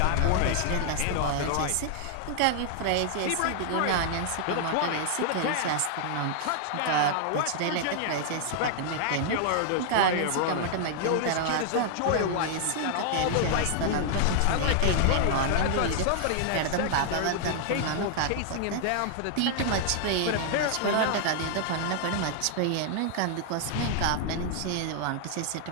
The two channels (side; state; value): both; different; correlation 0.00